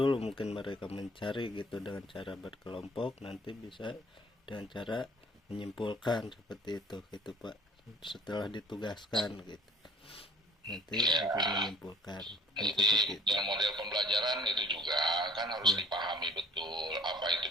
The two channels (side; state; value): both; normal; correlation 0.53